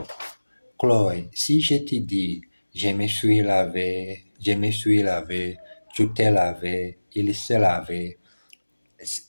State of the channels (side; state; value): both; inverted; correlation -1.00